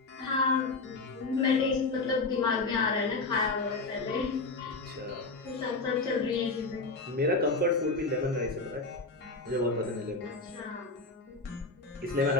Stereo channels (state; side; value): quieter; right; 3.6 dB